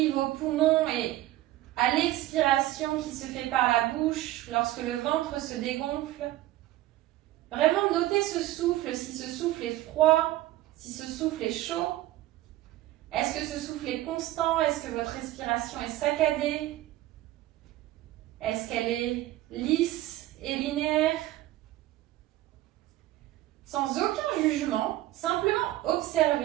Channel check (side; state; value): left; quieter; 15.7 dB